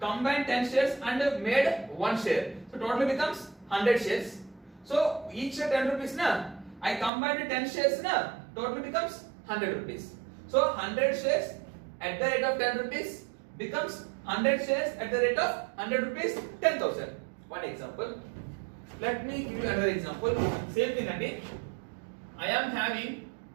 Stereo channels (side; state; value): left; drops out; at 7.1 s